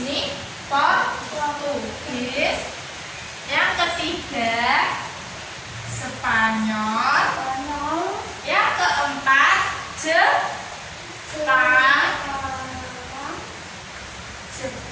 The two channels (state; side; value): identical; both; correlation 1.00